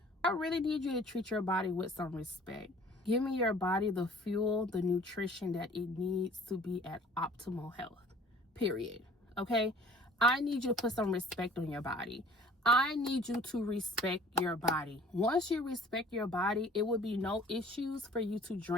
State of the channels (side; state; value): both; normal; correlation 0.51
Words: I really need you to treat your body with some respect. Give me your body the fuel, the nutrition that it needs to be at optimal health, period. Okay? I need you to put some respect on your body. I need you to respect your body. Once you respect your body, it will be no issues for you to